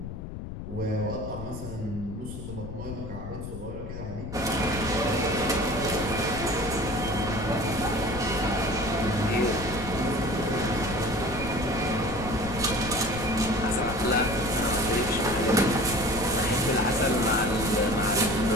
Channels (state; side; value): noise; left; rumble, 9 dB below the sound